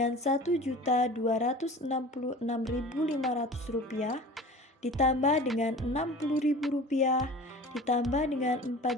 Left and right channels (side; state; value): both; normal; correlation 0.39